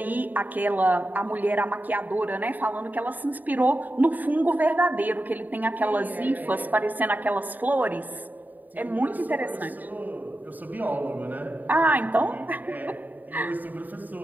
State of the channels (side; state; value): left; late; 0.085 ms